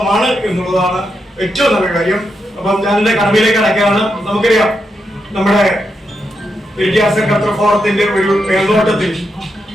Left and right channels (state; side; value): normal; both; correlation 0.84